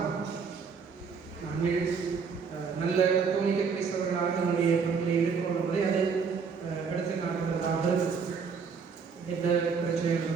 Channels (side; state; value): left; quieter; 5.7 dB